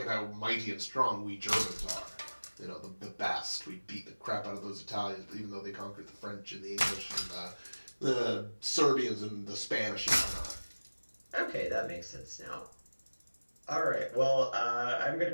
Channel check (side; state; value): both; inverted; correlation -1.00